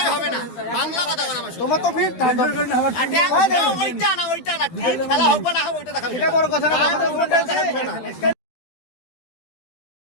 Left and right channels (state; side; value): late; right; 12 ms